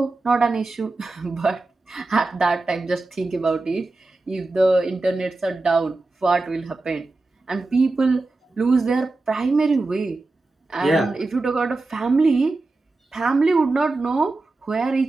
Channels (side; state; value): left; quieter; 3.3 dB